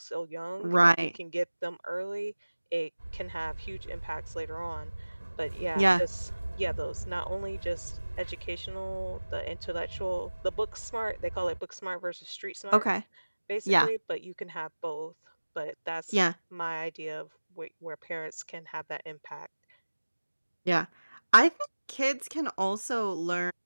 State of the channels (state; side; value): inverted; both; correlation -1.00